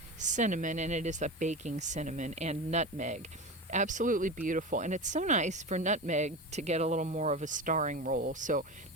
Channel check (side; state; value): both; normal; correlation 0.25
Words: cinnamon, and it is a baking cinnamon, and nutmeg. Absolutely beautiful. And it's so nice for nutmeg to get a little more of a starring role. So